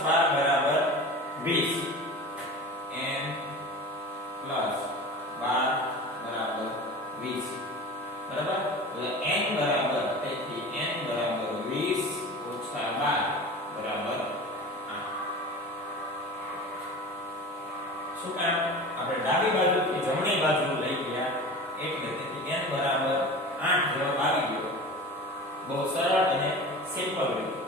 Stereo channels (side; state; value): both; normal; correlation 0.34